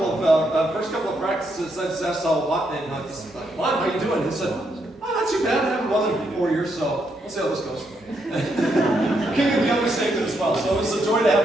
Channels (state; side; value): normal; both; correlation 0.78